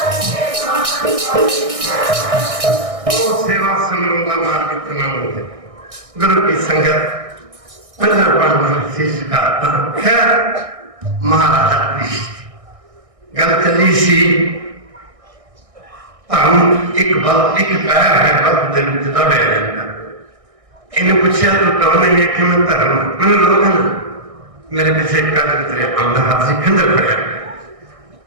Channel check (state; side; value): late; left; 1.6 ms